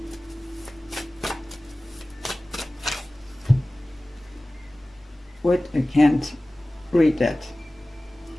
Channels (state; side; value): normal; both; correlation 0.97